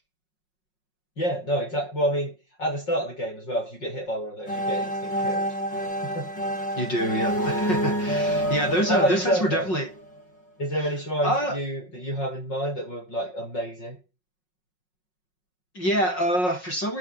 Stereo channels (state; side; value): late; right; 5.5 ms